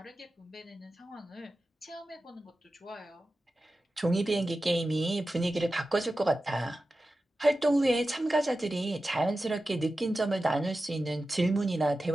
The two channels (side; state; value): both; normal; correlation 0.93